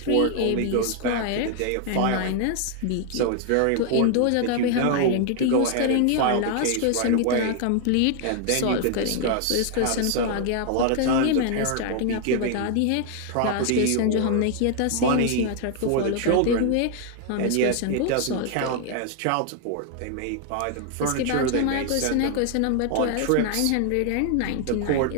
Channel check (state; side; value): different; both; correlation 0.00